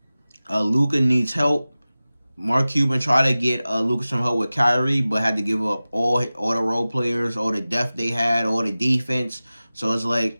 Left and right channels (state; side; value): inverted; both; correlation -0.97